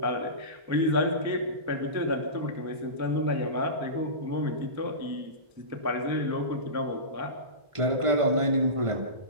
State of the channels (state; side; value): late; left; 1.5 ms